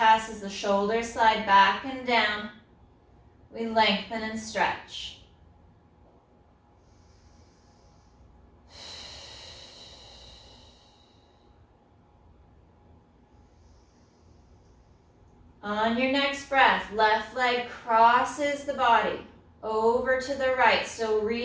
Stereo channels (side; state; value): both; identical; correlation 1.00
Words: as the shoulders slide back and down. We lengthen and stretch. On your next breath, left leg crosses the body over to the right. So